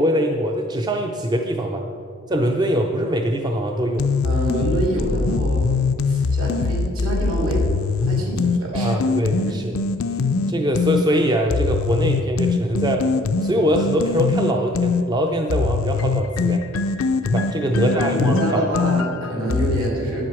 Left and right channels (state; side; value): normal; both; correlation 0.60